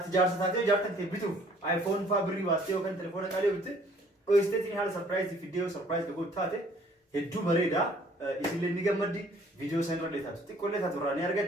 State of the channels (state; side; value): normal; both; correlation 0.58